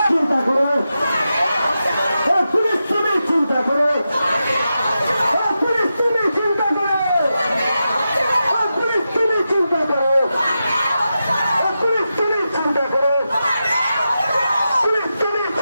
চিন্তা করো, পুলিশ তুমি চিন্তা করো, পুলিশ তুমি চিন্তা করো, পুলিশ তুমি চিন্তা করো, পুলিশ তুমি চিন্তা করো, পুলিশ তুমি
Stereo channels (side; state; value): both; inverted; correlation -0.90